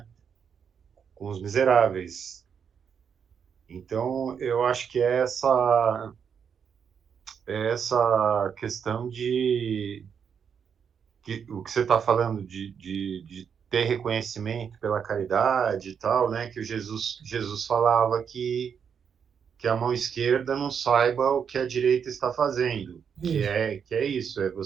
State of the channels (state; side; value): quieter; left; 7.2 dB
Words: Com os miseráveis. Então, eu acho que é essa questão o que você está falando de ter reconhecimento pela caridade e tal, né? Que o Jesus falava que a mão esquerda não saiba o que a direita está fazendo, que é isso, é